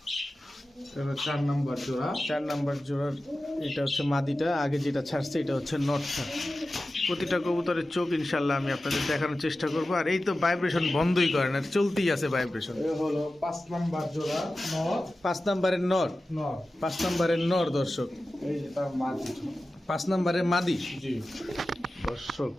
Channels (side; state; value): both; normal; correlation 0.94